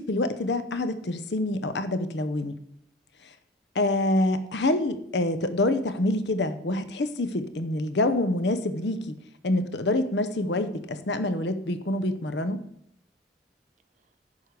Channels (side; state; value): both; normal; correlation 0.37